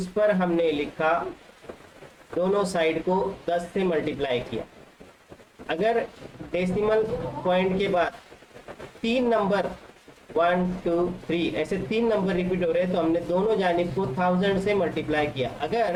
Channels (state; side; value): identical; both; correlation 1.00